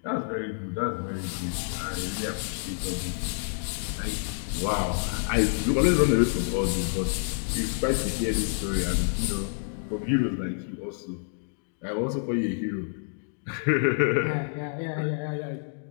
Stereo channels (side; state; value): right; silent; digital silence